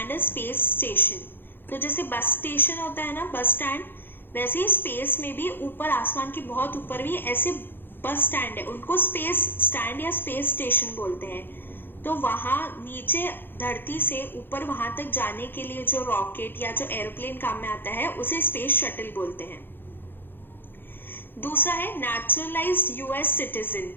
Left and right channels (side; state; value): right; late; 0.099 ms